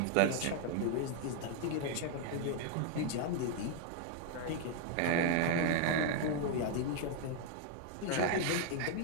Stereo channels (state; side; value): different; both; correlation 0.00